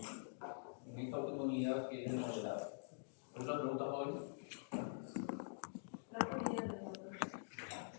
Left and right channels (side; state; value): right; silent; digital silence